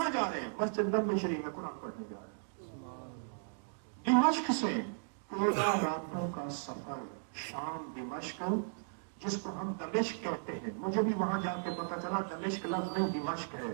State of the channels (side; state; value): left; silent; digital silence